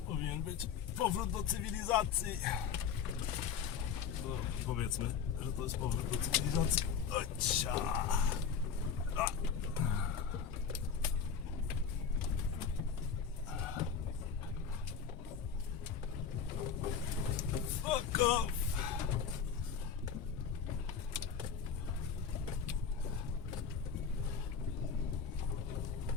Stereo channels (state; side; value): quieter; right; 6.8 dB